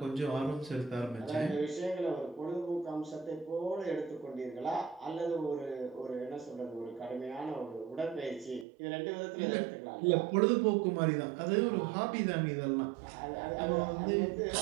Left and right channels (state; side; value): drops out; left; at 8.7 s